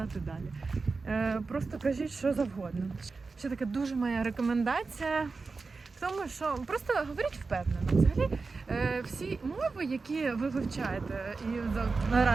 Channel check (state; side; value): quieter; left; 4.2 dB